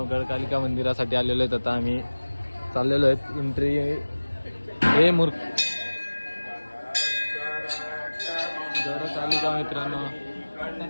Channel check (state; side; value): inverted; both; correlation -1.00